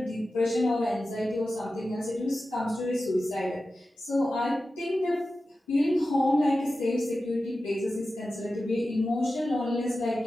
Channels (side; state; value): both; normal; correlation 0.93